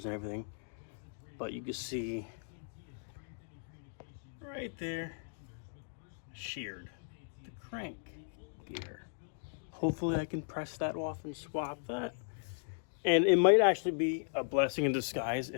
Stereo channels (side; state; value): right; silent; digital silence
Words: and everything, but you can see right there, sheared, the crank gear. Hopefully I can press that off and swap that. And it might actually be a blessing in disguise